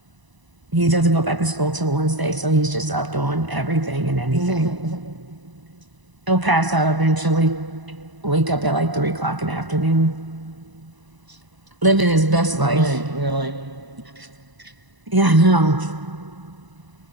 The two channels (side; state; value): left; late; 1.0 ms